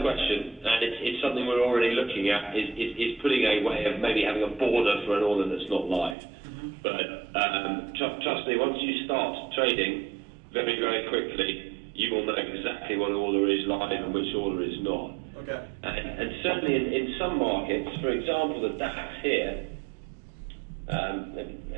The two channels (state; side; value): drops out; left; at 6.2 s